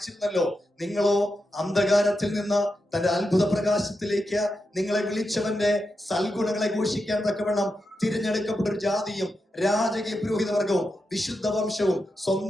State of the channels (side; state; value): both; normal; correlation 0.87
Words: നിങ്ങളോ അന്ധകാരത്തിൽ നിന്ന് തന്റെ അത്ഭുത പ്രകാശത്തിലേക്ക് നിങ്ങളെ വിളിച്ചവന്റെ സൽഗുണങ്ങളെ ഘോഷിക്കാൻ തക്കവണ്ണം തിരഞ്ഞെടുക്കപ്പെട്ട ഒരു ജാതിയും രാജകീയ പുരോഹിതവർഗവും വിശുദ്ധ വംശവും